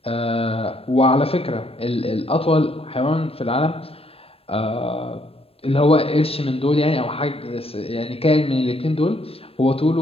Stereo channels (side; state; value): right; late; 0.28 ms